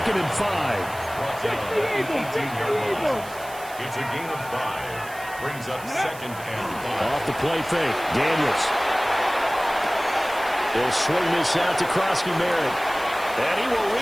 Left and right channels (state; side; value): noise; right; hiss, 17 dB below the sound